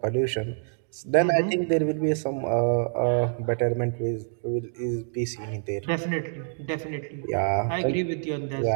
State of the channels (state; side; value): silent; left; digital silence